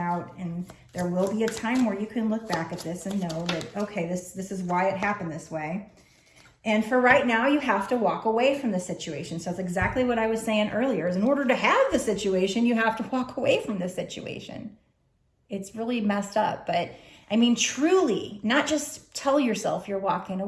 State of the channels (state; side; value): identical; both; correlation 1.00